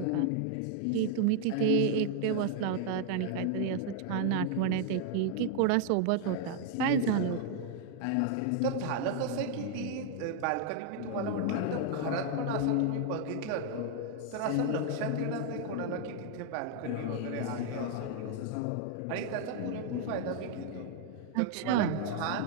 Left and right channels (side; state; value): both; different; correlation 0.00